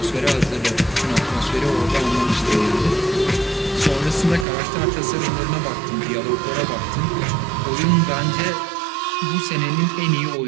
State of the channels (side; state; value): left; drops out; at 4.5 s